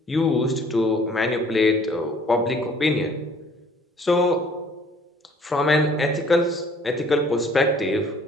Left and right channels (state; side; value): normal; both; correlation 0.56